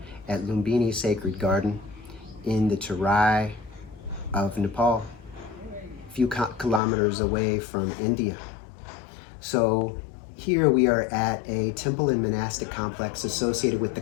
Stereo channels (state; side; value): drops out; right; at 6.8 s